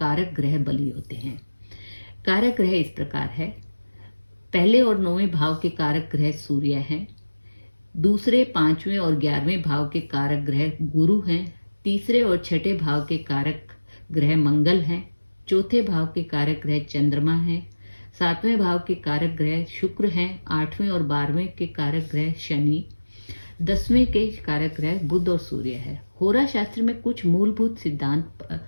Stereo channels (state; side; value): inverted; both; correlation -1.00